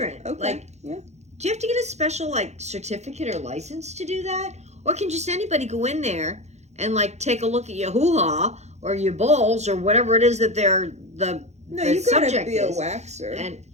Okay. like, yeah. do you have to get a special, like, certificate or license to do that? Or can just anybody go in there and, like, take a look at your hoo-ha or your balls or whatever it is that they're the No, the you gotta subject be a is. waxer. And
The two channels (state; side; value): late; left; 0.33 ms